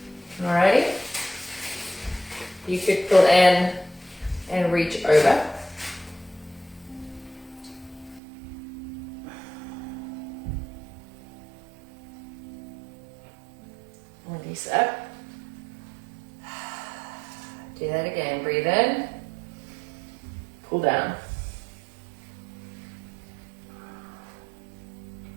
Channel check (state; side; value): drops out; left; at 8.2 s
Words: Alrighty. You could pull in and reach over. Release up. Do that again. Breathe in. Pull down.